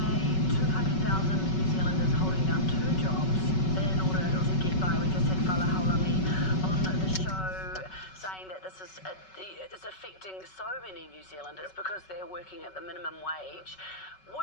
200,000 New Zealanders holding down 2 jobs in order to get by. We just had Fala Haulami on the show saying that this is affecting so many New Zealanders because they're working at the minimum wage.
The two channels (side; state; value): right; late; 5.3 ms